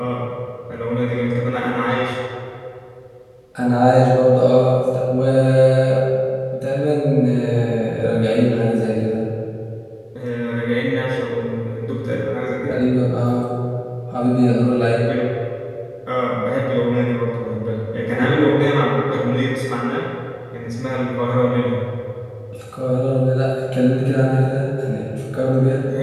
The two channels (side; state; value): both; identical; correlation 1.00